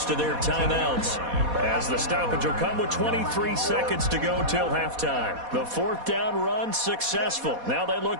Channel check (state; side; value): late; left; 4.1 ms